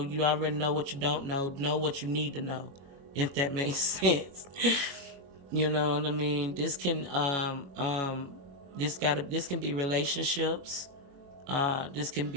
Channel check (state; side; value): late; left; 21 ms